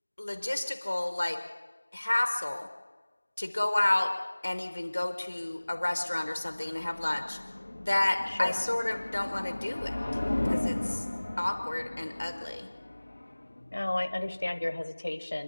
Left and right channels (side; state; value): both; inverted; correlation -1.00